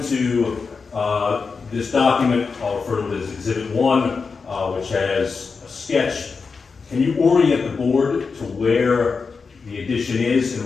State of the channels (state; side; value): quieter; right; 4.9 dB